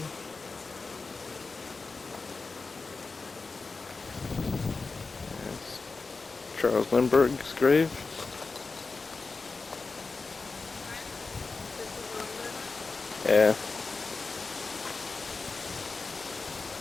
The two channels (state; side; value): quieter; right; 4.1 dB